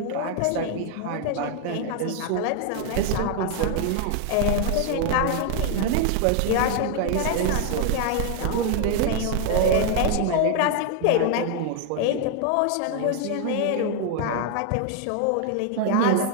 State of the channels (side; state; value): both; different; correlation 0.00